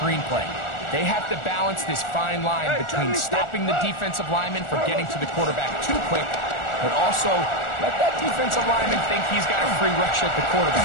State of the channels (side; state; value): right; late; 1.4 ms